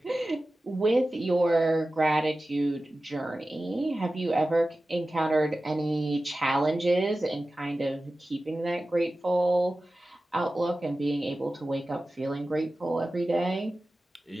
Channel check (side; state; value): both; normal; correlation 0.95